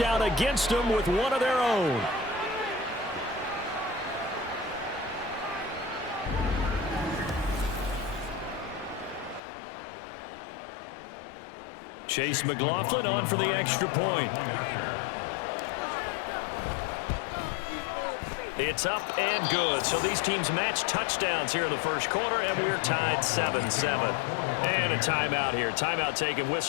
against them with one of their own. Chase McLaughlin on for the extra point. It's up and good. So these teams match touchdowns here in the first quarter, and we're tied 7-7. And a timeout here. Timeout taken,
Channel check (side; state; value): right; drops out; at 9.4 s